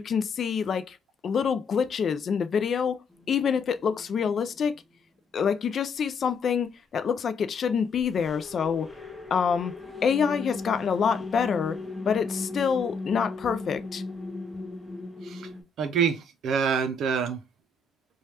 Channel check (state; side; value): quieter; right; 4.2 dB